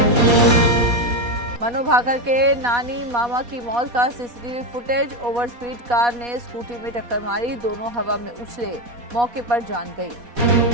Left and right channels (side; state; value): left; late; 4.2 ms